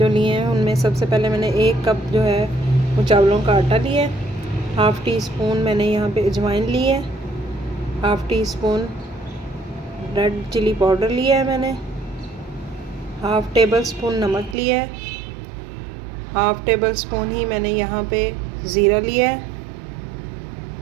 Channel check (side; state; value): left; drops out; at 14.6 s